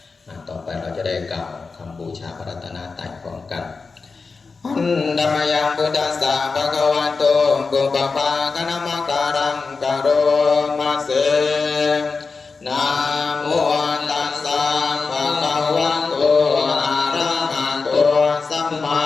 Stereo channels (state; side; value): quieter; right; 4.5 dB